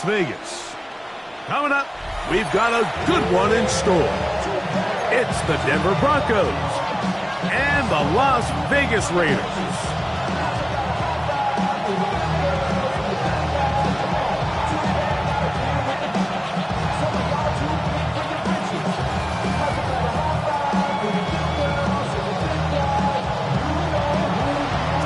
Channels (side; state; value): both; identical; correlation 1.00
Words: Vegas. Coming up, we've got a good one in store. It's the Denver Broncos and the Las Vegas Raiders.